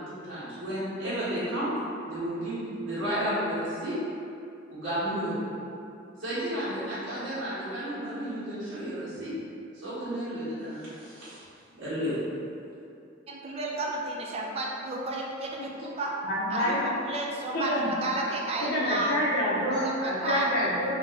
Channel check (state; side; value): normal; both; correlation 0.11